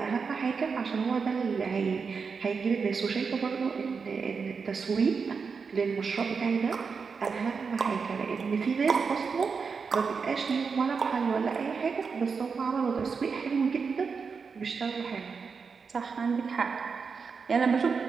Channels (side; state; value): left; quieter; 5.4 dB